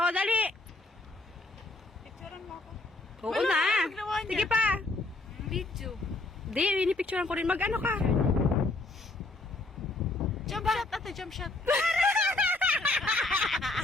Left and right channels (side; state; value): right; quieter; 3.1 dB